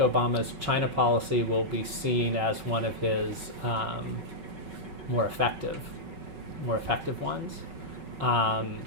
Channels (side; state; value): left; late; 5.3 ms